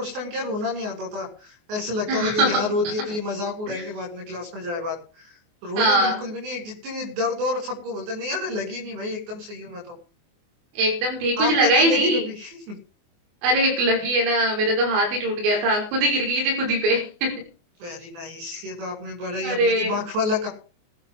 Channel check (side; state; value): left; late; 24 ms